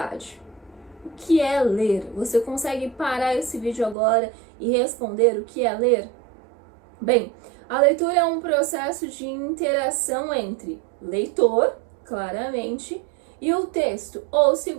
O que é ler? Você consegue parar esse vídeo agora e responder o que é ler? Bem, a leitura é um processo de interação entre leitor, claramente, e o texto, ou se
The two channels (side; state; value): left; drops out; at 4.0 s